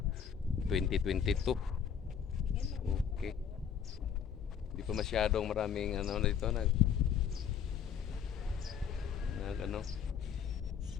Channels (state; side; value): quieter; right; 7.8 dB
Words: 2022. Okay. Hindi pa masyadong maraming dito nag